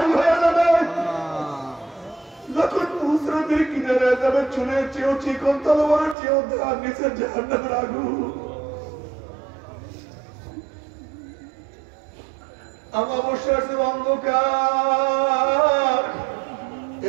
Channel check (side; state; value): left; drops out; at 6.2 s